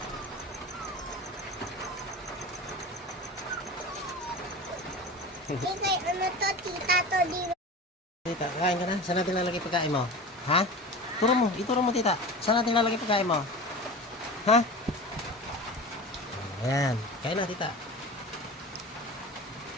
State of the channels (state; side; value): normal; both; correlation 0.33